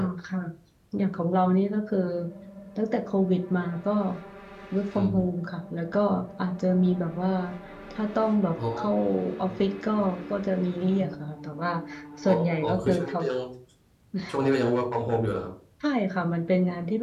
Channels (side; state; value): both; identical; correlation 1.00